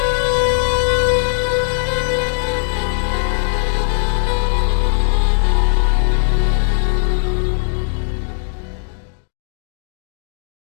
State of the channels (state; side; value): silent; right; 67 dB below the other